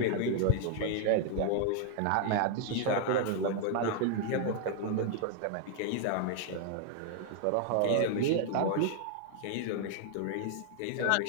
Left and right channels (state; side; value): different; both; correlation 0.00